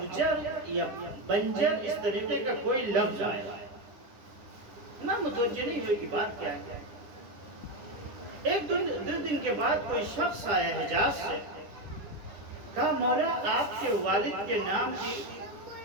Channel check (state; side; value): late; left; 10 ms